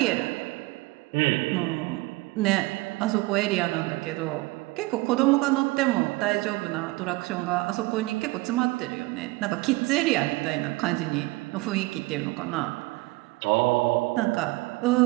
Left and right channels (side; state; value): left; quieter; 22.2 dB